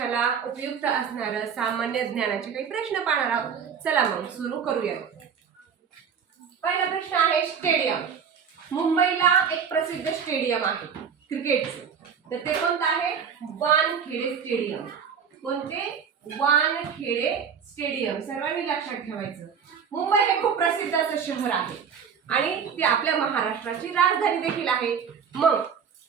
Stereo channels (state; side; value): quieter; left; 7.0 dB